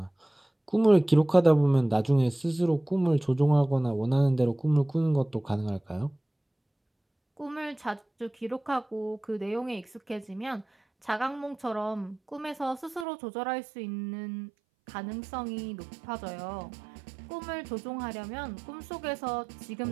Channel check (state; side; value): drops out; left; at 13.1 s